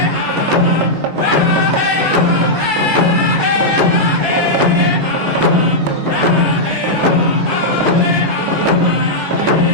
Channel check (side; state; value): left; late; 13 ms